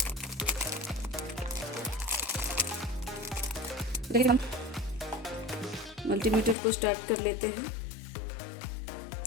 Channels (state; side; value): drops out; right; at 6.6 s